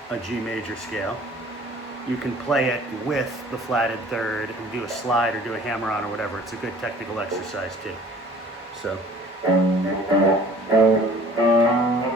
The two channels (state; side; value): normal; both; correlation 0.50